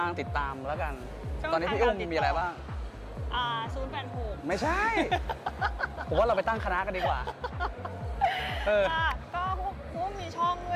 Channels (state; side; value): identical; both; correlation 1.00